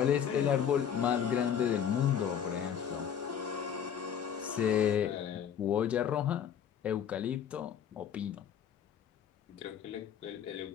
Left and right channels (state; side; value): quieter; right; 8.6 dB